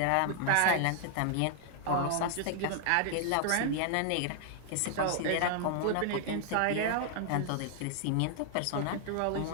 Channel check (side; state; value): both; different; correlation 0.00